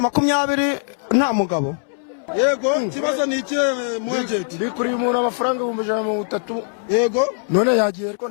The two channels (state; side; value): silent; right; 65 dB below the other